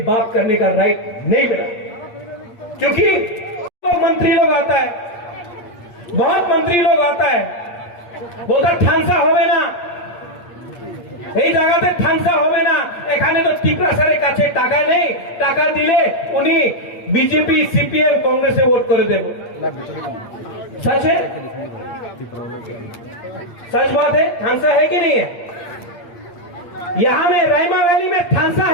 बात करने का राइट नहीं मिला। क्योंकि मंत्री लोग आता है, बहुत मंत्री लोग आता है, बोलता ठानसा होवे ना, এই জায়গাতে ঠানসা হবে না, এখানে তো টিপরাসারের কাছে টাকা নেই, টাকা দিলে উনি বিজেপি সিপিএম কংগ্রেসে ভোট করে দেব। सच है? सच बात है? ठानसा है कि नहीं है? यहां में रायमा वैली में ठानसा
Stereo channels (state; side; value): late; right; 8.6 ms